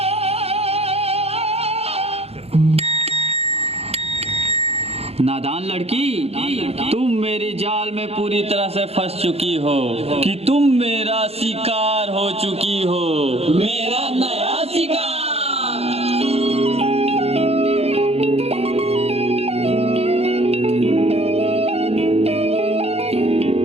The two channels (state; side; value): late; left; 0.29 ms